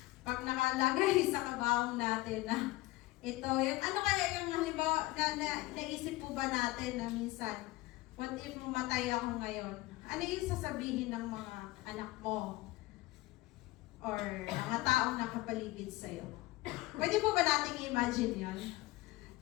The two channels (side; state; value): right; quieter; 19.6 dB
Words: pag nakalagay sa kabahong natin na ito, yung ano kaya yung halimbawa naisip po ba natin na minsan, what if mamatay ako ngayon? Ano yung sasabihin ng mga anak mo? Or mga taong nakapaligid sa'yo? Pwede po ba nating i-imagine yun?